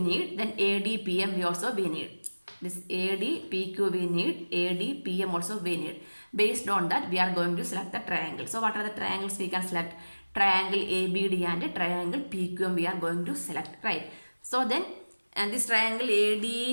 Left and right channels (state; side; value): inverted; both; correlation -1.00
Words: Then AD, PM we need. This AD, PQ we need. AD, PM also we need. Based on that we are going to select the triangle. So what are the triangles we can select? Triangle ABD and triangle PQM we are going to select. Right. So then and this triangle